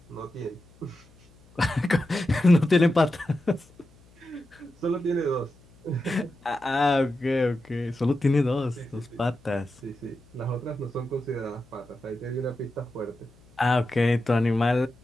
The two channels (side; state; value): left; noise; hum, 28 dB below the sound